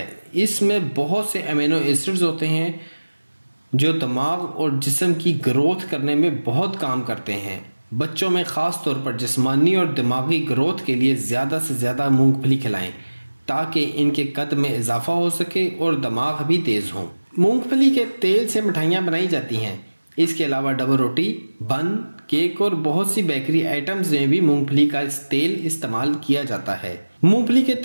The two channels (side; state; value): both; inverted; correlation -1.00